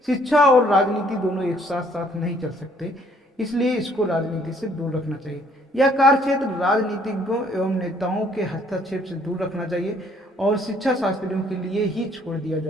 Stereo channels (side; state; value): both; normal; correlation 0.63